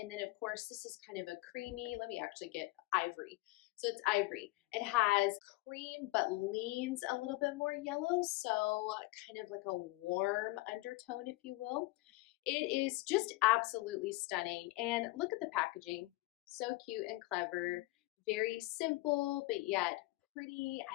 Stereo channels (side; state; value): right; quieter; 20.8 dB